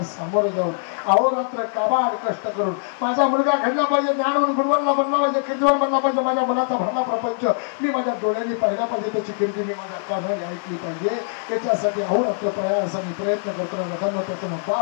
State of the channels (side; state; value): right; silent; digital silence